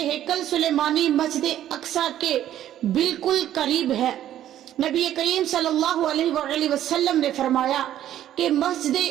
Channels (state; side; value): quieter; left; 11.9 dB